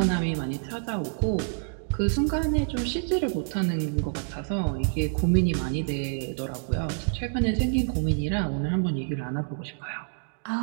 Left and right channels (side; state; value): left; silent; 60 dB below the other